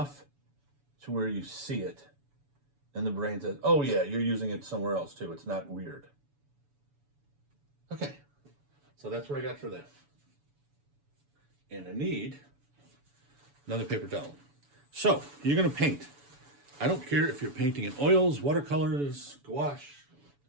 to where you see it and the brain says, oh yeah, you're using it somewhere else too. It's not weird. Okay, so that's what I got for that. And I need another paper towel. So you're gonna paint. I don't care if you're painting in oils, watercolors, gouache.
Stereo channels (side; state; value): left; late; 7.0 ms